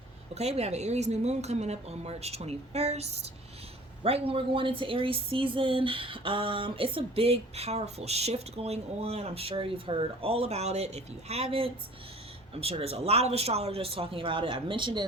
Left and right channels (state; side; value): normal; both; correlation 0.47